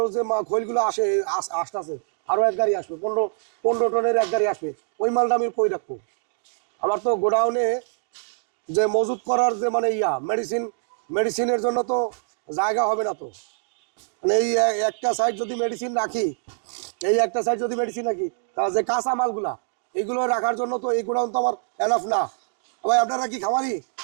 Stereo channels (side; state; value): left; silent; digital silence